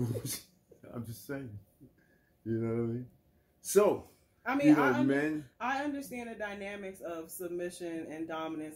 I'm just saying, you know what I mean? So, I mean, you know, I understand the dynamics of submission and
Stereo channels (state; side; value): identical; both; correlation 1.00